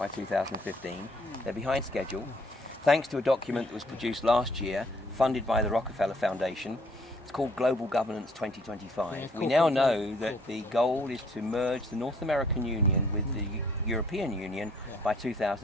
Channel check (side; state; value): both; normal; correlation 0.62